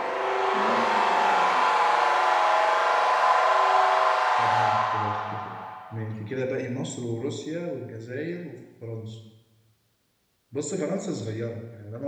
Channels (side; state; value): both; identical; correlation 1.00